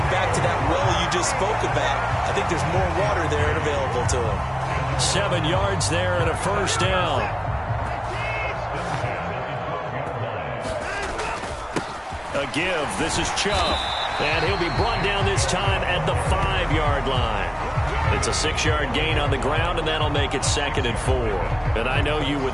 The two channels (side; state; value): both; identical; correlation 1.00